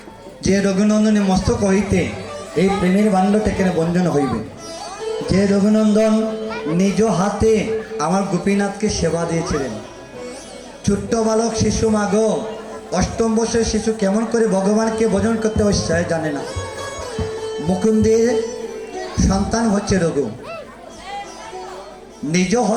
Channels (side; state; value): both; identical; correlation 1.00